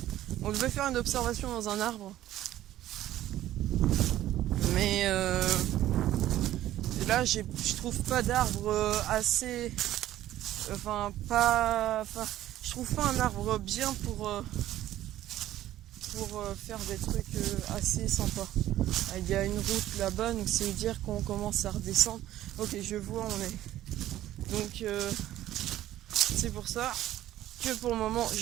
On devait faire une observation dans un arbre, mais là je trouve pas d'arbre assez, je trouve pas un arbre bien pour faire des trucs assez sympas. Il y a une route là-bas, donc c'est dire qu'on commence à redescendre. Ok, je vois où on est. Donc c'est pour ça que pour le moment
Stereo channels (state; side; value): quieter; left; 13.6 dB